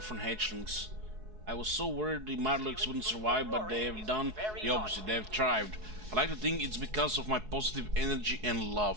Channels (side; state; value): left; late; 4.7 ms